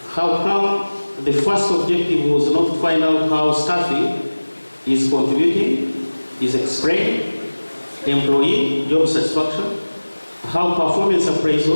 How come the first objective was not to find out how staffing is contributing, is explained, employee job satisfaction, how performance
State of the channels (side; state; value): both; inverted; correlation -1.00